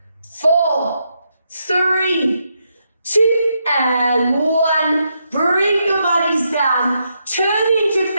4, 3, 2, and 1. Bring your bodies down, turn into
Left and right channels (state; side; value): inverted; both; correlation -0.80